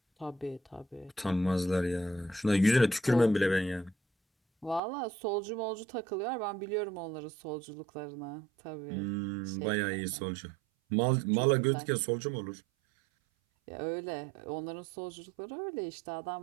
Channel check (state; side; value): drops out; left; at 4.8 s